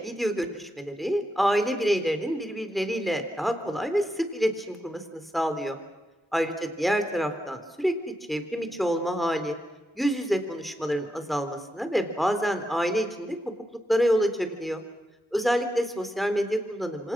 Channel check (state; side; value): normal; both; correlation 0.84